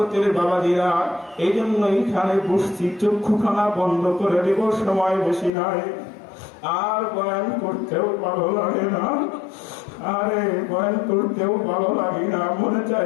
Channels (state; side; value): drops out; right; at 5.5 s